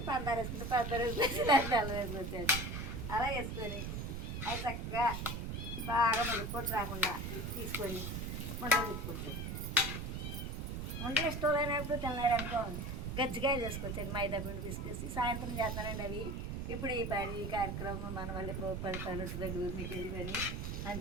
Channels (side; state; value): right; noise; rumble, 4 dB below the sound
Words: పందారు వేసుకుంటే పందారు వేసుకోవచ్చు, దాని బెల్లం వేసుకోవచ్చు. అలా వేసుకొని అది చక్కగా బాగా ముడిపోటు రాకుండా తీసుకొని ఉండలు తిప్పుకోవచ్చు. ఉండలు ఇష్టం లేనప్పుడు తినలేరనుకో గజ్జికాయలు చేసుకోవచ్చండి. మైదా పిండి తీసుకొచ్చి సాయంత్రం చేస్తానండి అవి. ఇప్పుడు ఈ పని కార్యక్రమం మన వల్ల 10 పనులు దగ్గర మీకు వెళ్ళి పని